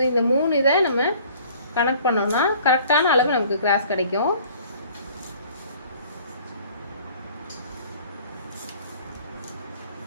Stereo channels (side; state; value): both; inverted; correlation -0.52